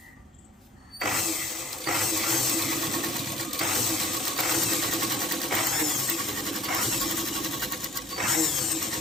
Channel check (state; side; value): normal; both; correlation 0.51